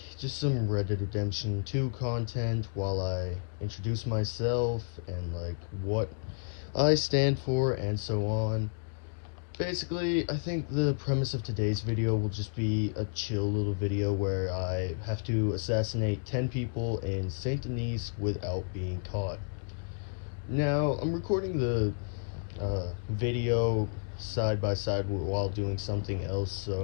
just some Red Dead Redemption 2 content while I introduce myself and like what I stand for and so on. Basically, I think the premise of today's video will just be a chill little video where I have to assassinate 10 people in Saint Denis without being caught. Now, I'm recording the video side by side while doing something else,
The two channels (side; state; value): right; silent; digital silence